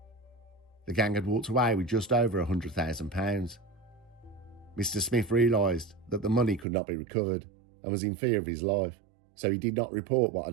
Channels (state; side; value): drops out; left; at 6.7 s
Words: The gang had walked away with just over £100,000. Mr. Smith realised that the money could not be recovered and was in fear of his life, so he did not report what